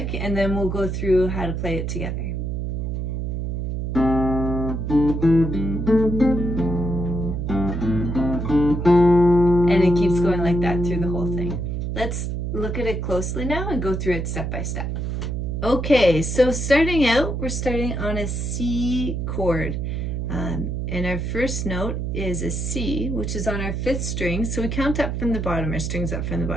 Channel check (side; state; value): right; noise; hum, 2 dB below the sound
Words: and then we'll go through how to play it together. And it keeps going like that through the whole thing. Let's look at it closely now and go through it step by step. Okay, so starting out, we're starting on a C chord. And our first note is a C, which is on our fifth string. So we count up from the bottom, our strings up from the